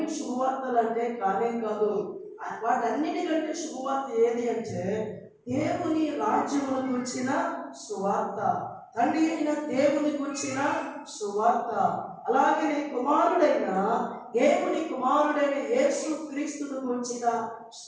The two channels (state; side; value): identical; both; correlation 1.00